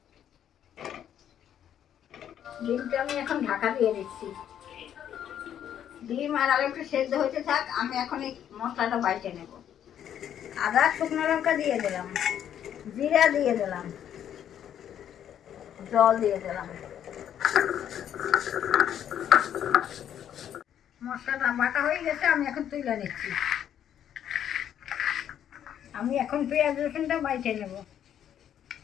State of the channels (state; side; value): quieter; right; 9.9 dB